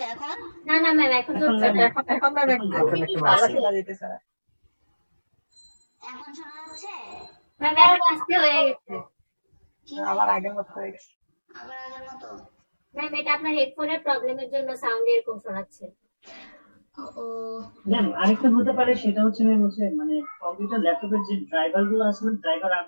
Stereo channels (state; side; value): inverted; both; correlation -1.00